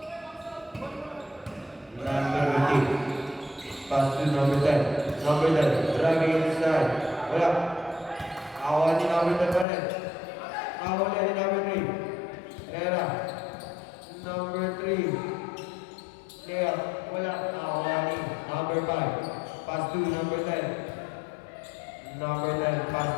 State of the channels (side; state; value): right; drops out; at 9.7 s